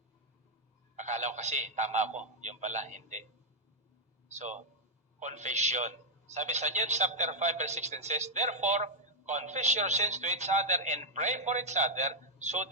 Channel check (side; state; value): both; normal; correlation -0.03